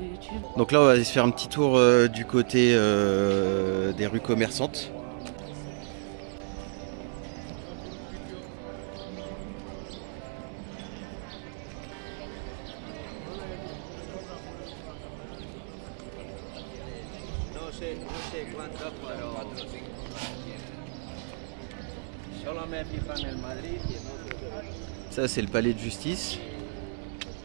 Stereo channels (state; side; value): silent; left; digital silence